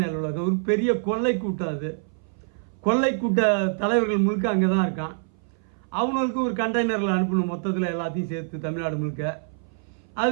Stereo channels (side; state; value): left; silent; 59 dB below the other